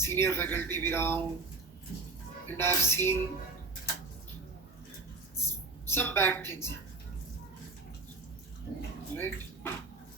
फैकल्टी भी रहा हूँ, and I have seen some bad things, right?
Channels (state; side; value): quieter; left; 3.5 dB